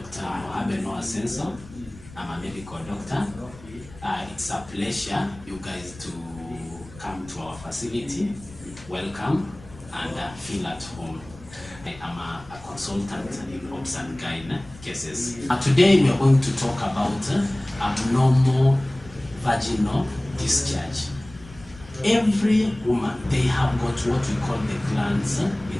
Abeno Asenso. I'm a medical doctor. It's a pleasure you guys to come to our facility. Welcome and feel at home. I'm a consultant in obs and gyne cases. Today we are going to talk about abnormal vaginal discharge. Every woman, they have got what we call the glands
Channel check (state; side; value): noise; left; rumble, 19 dB below the sound